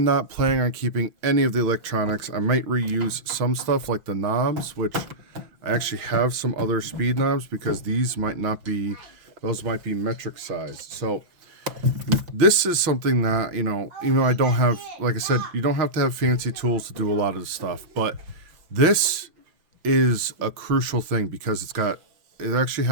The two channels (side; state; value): left; late; 5.9 ms